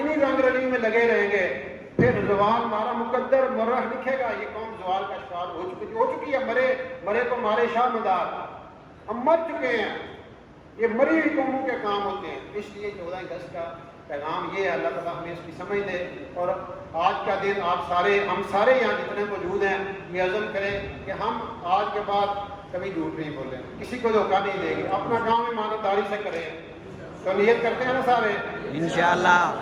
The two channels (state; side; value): identical; both; correlation 1.00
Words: انہی رنگ رلی میں لگے رہیں گے پھر زوال ہمارا مقدر مرہ لکھے گا. یہ قوم زوال کا شکار ہو چکی ہے. مرے کو مارے شاہ مدار, ہم مر چکے ہیں. یہ مری ہوئی قوموں کے کام ہوتے ہیں. اس لیے 14 اگست کا پیغام یہ ہے, اللہ تعالیٰ ہمیں اس کی سمجھ دے. اور آج کا دن ہم سارے یہاں جتنے موجود ہیں یہ عزم کریں کہ ہم آج کے بعد کبھی جھوٹ نہیں بولیں, کسی کو دھوکہ نہیں دیں گے, اپنا کام ایمانداری سے کریں. تو نیت کرتے ہیں نا سارے, انشاءاللہ